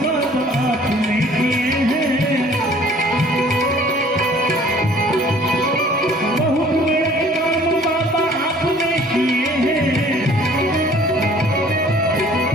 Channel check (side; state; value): both; normal; correlation 0.54